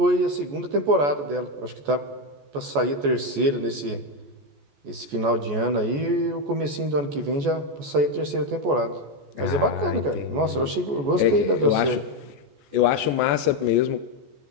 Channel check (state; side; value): late; left; 14 ms